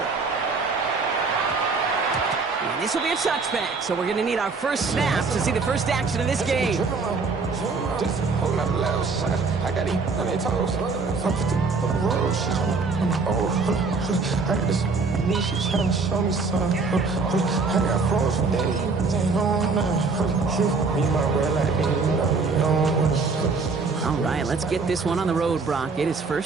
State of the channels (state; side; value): quieter; left; 4.4 dB